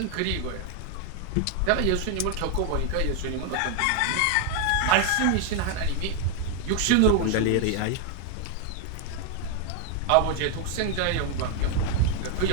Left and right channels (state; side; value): different; both; correlation 0.00